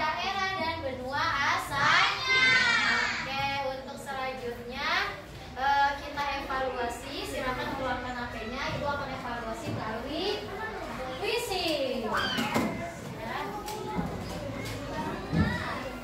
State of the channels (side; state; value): both; identical; correlation 1.00